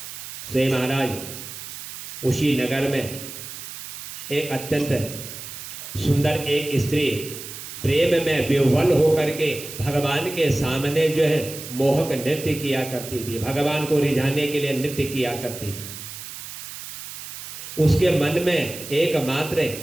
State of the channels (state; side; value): noise; right; hiss, 11 dB below the sound